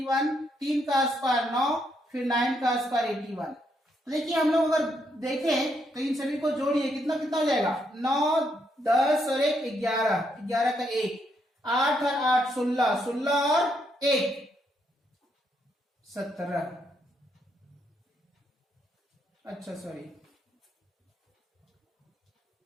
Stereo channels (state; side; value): normal; both; correlation 0.76